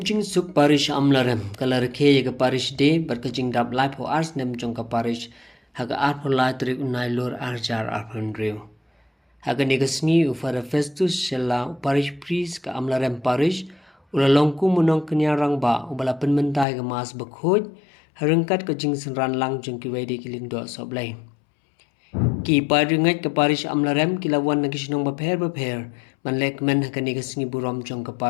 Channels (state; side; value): drops out; right; at 16.7 s